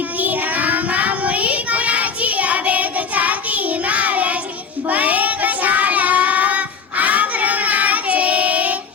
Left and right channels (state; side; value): quieter; right; 5.8 dB